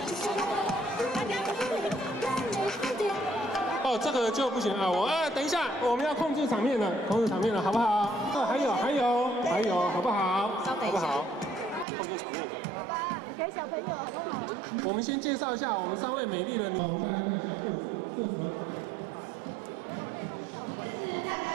哦，这个就不行啊！等一下，我们要控制场面了，好不好？还有，好不好？稍等一下，好不好？控制场面一下。给小朋友好不好？我们先介绍一下我们3位美丽的女。我们大家看一下这什么？这是大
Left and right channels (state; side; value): drops out; left; at 11.9 s